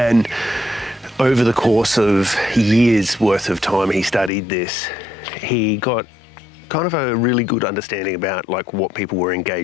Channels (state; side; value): drops out; right; at 4.3 s